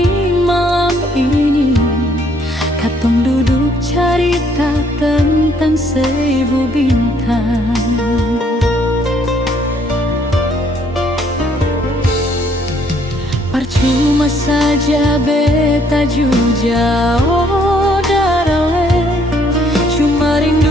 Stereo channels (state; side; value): normal; both; correlation 0.65